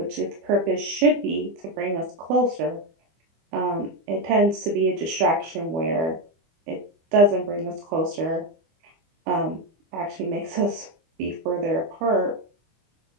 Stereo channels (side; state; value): left; late; 25 ms